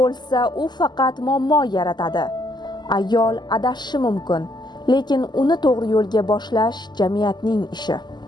u faqat muammo yaratadi. Ayol adashishi mumkin, lekin uni to'g'ri yo'lga boshlash jamiyatning ishi.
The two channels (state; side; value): late; right; 0.21 ms